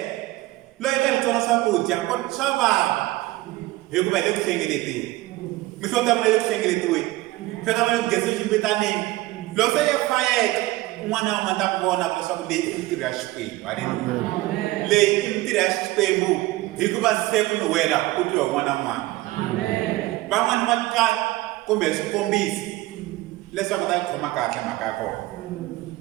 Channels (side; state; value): left; quieter; 18.7 dB